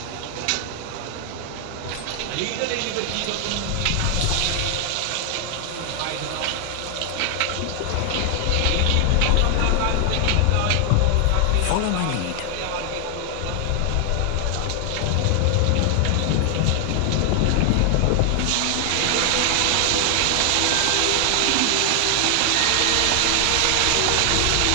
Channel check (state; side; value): different; both; correlation 0.00